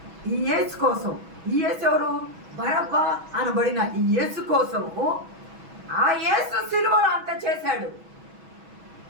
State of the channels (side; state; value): left; late; 6.1 ms